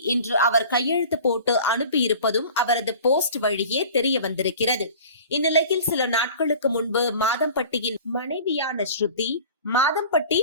இன்று அவர் கையெழுத்து போட்டு அனுப்பியிருப்பதும் அவரது போஸ்ட் வழியே தெரிய வந்திருக்கிறது. இந்நிலையில் சில நாட்களுக்கு முன்பு மாதம்பட்டியின் மனைவியான ஸ்ருதி மாதம்பட்டி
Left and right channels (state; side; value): inverted; both; correlation -0.42